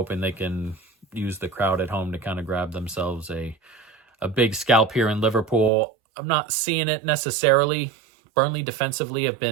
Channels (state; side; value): drops out; left; at 5.7 s